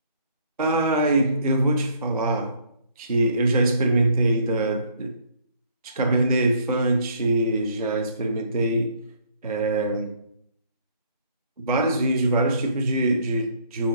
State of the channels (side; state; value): both; inverted; correlation -0.64